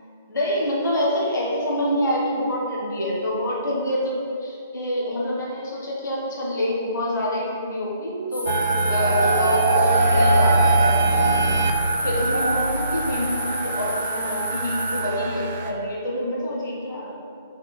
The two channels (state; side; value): inverted; both; correlation -0.65